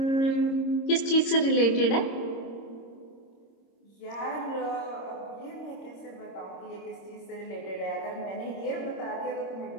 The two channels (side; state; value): right; late; 26 ms